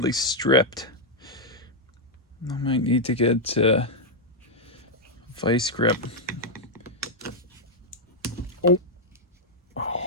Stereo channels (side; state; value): both; normal; correlation -0.02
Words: stripped. I might need to get vice grip. Oh,